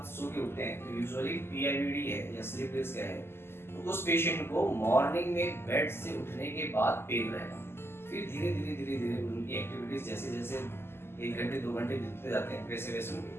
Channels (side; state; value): right; late; 0.12 ms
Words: सो के उठते हैं तो यूजुअली पीआईवीडी है या स्लिप डिस्क है तो उस पेशेंट को मॉर्निंग में बेड से उठने के बाद पेन रहेगा। फिर धीरे धीरे उनकी एक्टिविटीज जैसे जैसे 1 घंटे 2 घंटे बीतते जाते हैं वैसे वैसे उनकी